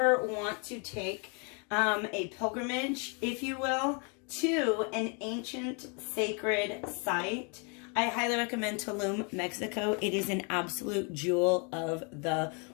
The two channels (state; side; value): quieter; right; 35.6 dB